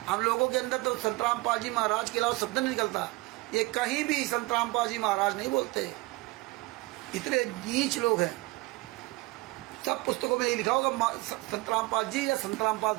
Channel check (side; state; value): left; quieter; 22.0 dB